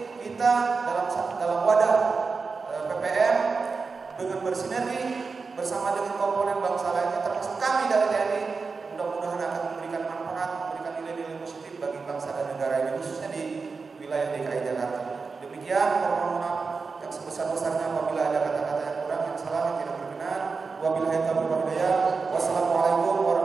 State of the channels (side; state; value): left; quieter; 4.6 dB